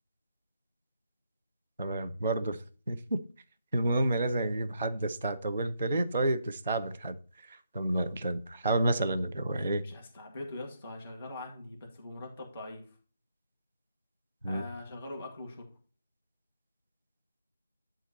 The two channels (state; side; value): inverted; both; correlation -0.76